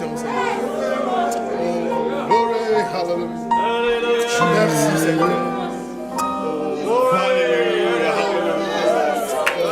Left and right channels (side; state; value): both; identical; correlation 1.00